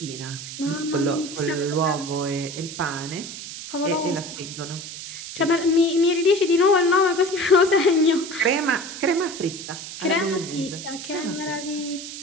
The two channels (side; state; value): right; noise; hiss, 10 dB below the sound